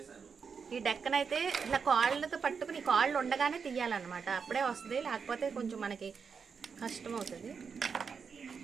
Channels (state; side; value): quieter; left; 5.9 dB